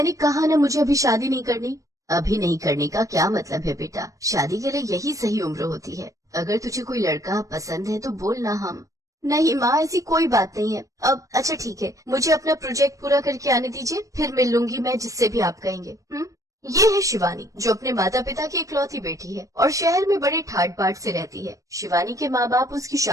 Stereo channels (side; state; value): left; late; 0.16 ms